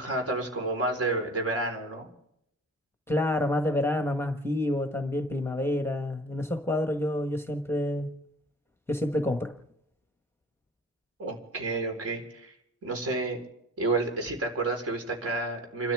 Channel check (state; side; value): normal; both; correlation 0.45